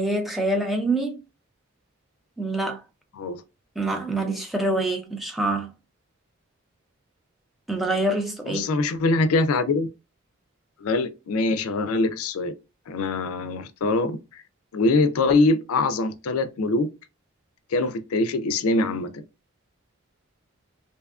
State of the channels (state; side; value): normal; both; correlation 0.40